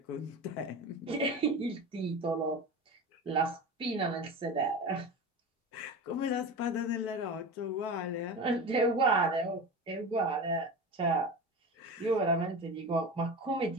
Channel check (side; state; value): both; normal; correlation 0.29